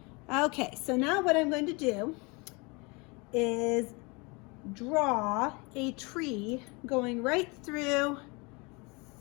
Okay, so now what I'm going to do is draw a tree going right through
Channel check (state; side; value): quieter; right; 28.6 dB